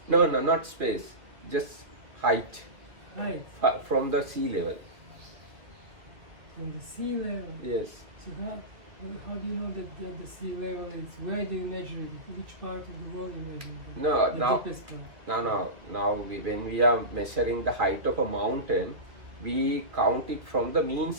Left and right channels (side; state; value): left; late; 2.3 ms